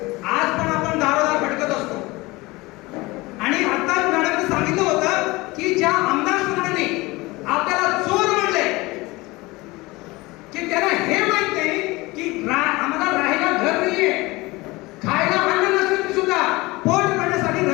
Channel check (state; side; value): quieter; right; 22.0 dB